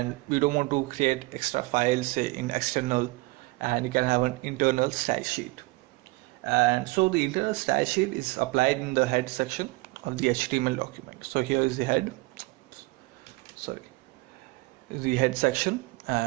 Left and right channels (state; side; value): quieter; left; 23.4 dB